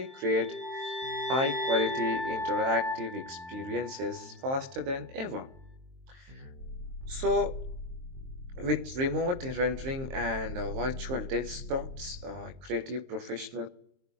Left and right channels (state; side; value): late; left; 23 ms